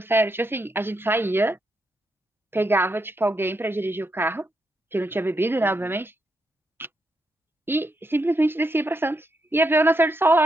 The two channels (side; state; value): both; normal; correlation 0.81